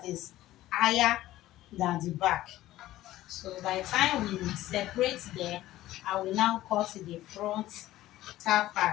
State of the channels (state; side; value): quieter; right; 15.2 dB